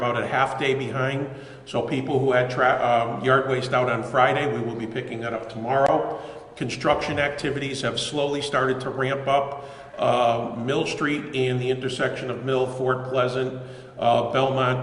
a half day behind. So people who had yard waste out on Friday, we will be picking that up tomorrow. Construction activities have slowly started to ramp up. Mill Street and the intersection of Mill, Fort Pleasant,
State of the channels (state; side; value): identical; both; correlation 1.00